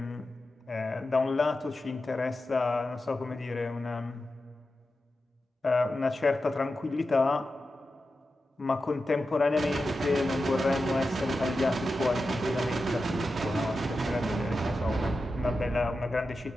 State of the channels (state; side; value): normal; both; correlation 0.91